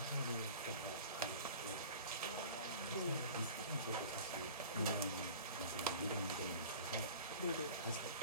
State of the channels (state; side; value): inverted; both; correlation -0.41